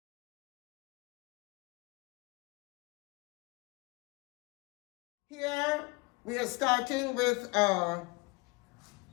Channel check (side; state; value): right; quieter; 25.7 dB